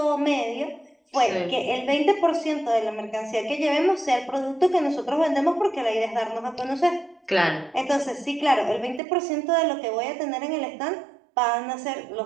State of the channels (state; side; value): drops out; left; at 9.0 s